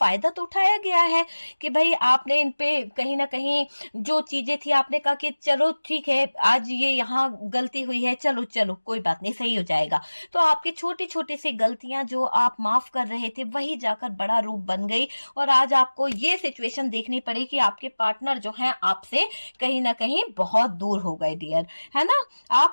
तो उठाया गया है कि भाई आपने इन पे कहीं ना कहीं जो चीजें थी, आपने कहा कि चलो ठीक है, आज ये यहाँ गलती हुई है, चलो चलो कोई बात नहीं, सही हो जाएगा। तो आपकी छोटी छोटी सी गलतियां जो आप माफ कर रहे थे, वही जाकर बड़ा रूप बन गई, और आज आपको ये सिचुएशन देखनी पड़ी कि आपके पार्टनर जो है आपसे कहीं ना कहीं बहुत दूर हो गए डियर, है ना।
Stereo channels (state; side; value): inverted; both; correlation -1.00